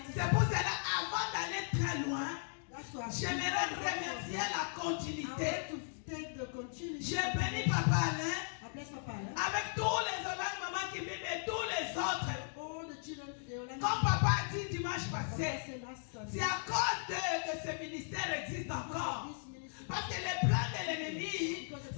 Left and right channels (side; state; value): right; silent; digital silence